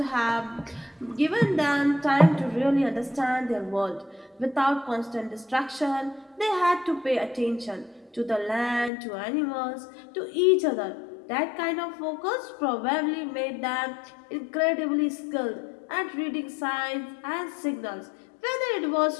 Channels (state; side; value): drops out; right; at 8.9 s